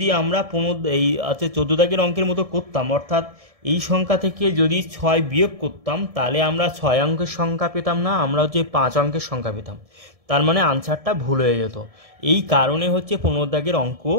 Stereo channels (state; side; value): late; left; 1.7 ms